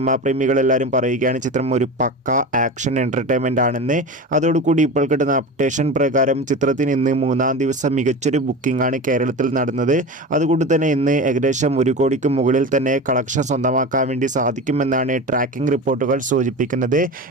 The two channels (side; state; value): both; normal; correlation 0.28